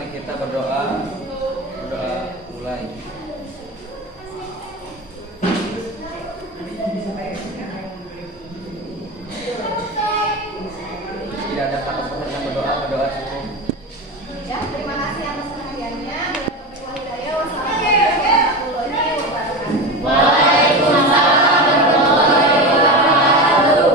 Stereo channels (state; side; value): normal; both; correlation 0.23